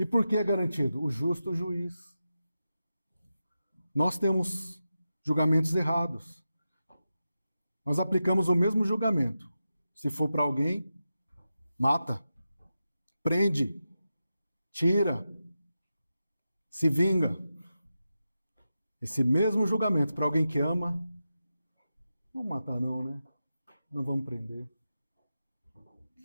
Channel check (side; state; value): both; inverted; correlation -0.91